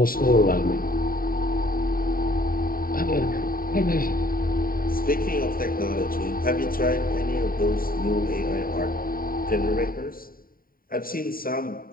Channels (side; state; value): right; late; 0.42 ms